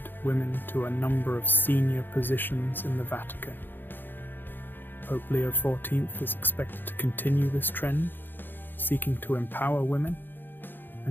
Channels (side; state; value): right; late; 0.095 ms